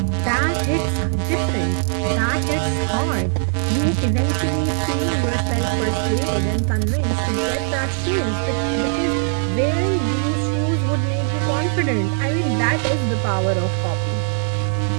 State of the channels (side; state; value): left; silent; digital silence